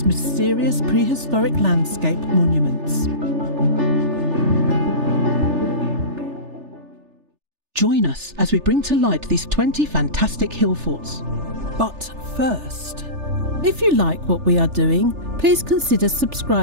mysterious prehistoric landscape monuments. Join us as we bring to light these 20 fantastic Hillforts. But first, if you like what we are doing, please consider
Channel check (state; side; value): late; left; 3.4 ms